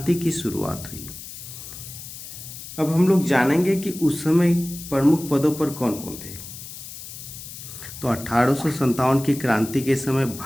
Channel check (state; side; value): noise; left; hiss, 12 dB below the sound